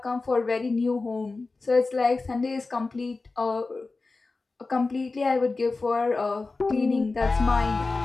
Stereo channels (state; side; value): quieter; right; 3.7 dB